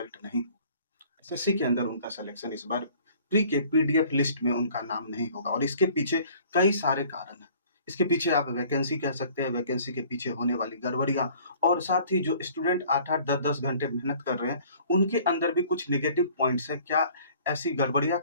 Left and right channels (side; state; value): both; inverted; correlation -0.53